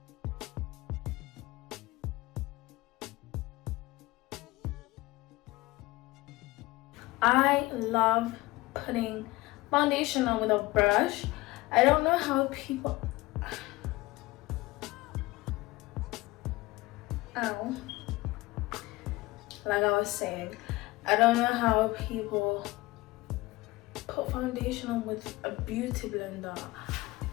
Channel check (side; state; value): right; quieter; 20.3 dB